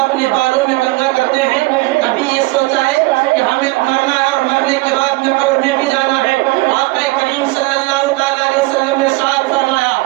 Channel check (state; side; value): quieter; left; 22.9 dB